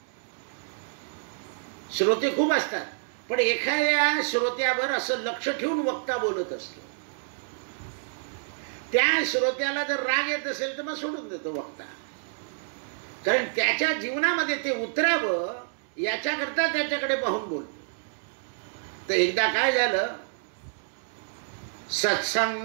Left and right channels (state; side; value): silent; left; digital silence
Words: श्रोते खूप असतात, पण एखाद्या श्रोत्यावर असं लक्ष ठेवून वक्ता बोलत असतो. त्या श्रोत्याला जर राग येत असेल तर मग सोडून देतो वक्ता, कारण त्याच्या जीवनामध्ये ते उतरावं याच्याकरता त्याच्याकडे पाहून बोलतो. तर एकदा काय झालं,